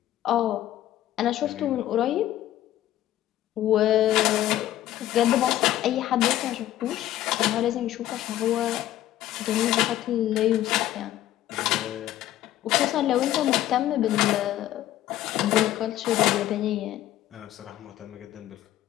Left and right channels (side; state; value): right; quieter; 13.5 dB